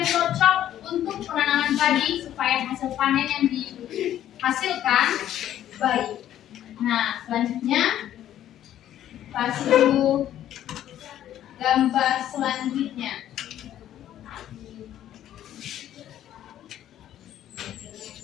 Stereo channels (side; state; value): right; quieter; 11.7 dB